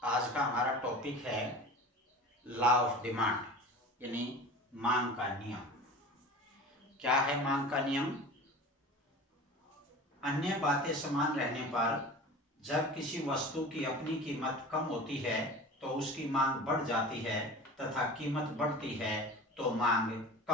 आज का हमारा टॉपिक है लॉ ऑफ डिमांड यानी मांग का नियम। क्या है मांग का नियम? अन्य बातें समान रहने पर जब किसी वस्तु की अपनी कीमत कम होती है तो उसकी मांग बढ़ जाती है तथा कीमत बढ़ती है तो मांग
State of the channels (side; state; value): both; normal; correlation 0.36